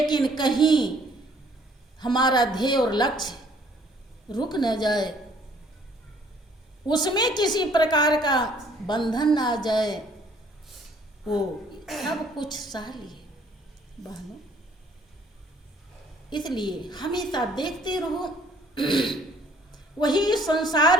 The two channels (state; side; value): normal; both; correlation 0.60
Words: कहीं हमारा ध्येय और लक्ष्य रुक न जाए, उसमें किसी प्रकार का बंधन ना आ जाए, वो सब कुछ सह लिए बहनों। इसलिए हमेशा देखते रहो, वही